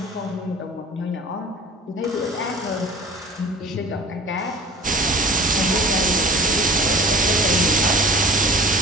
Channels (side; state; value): both; normal; correlation 0.44